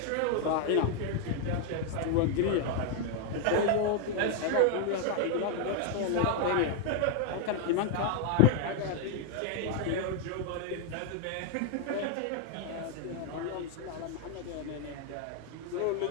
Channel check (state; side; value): different; both; correlation 0.00